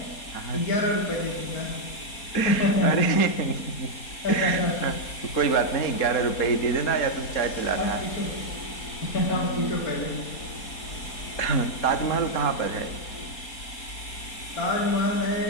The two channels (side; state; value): right; late; 4.3 ms